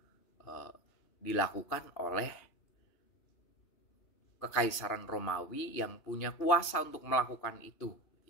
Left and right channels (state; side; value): late; right; 2.8 ms